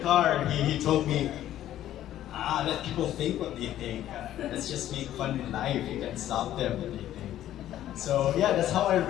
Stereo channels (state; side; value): quieter; right; 12.5 dB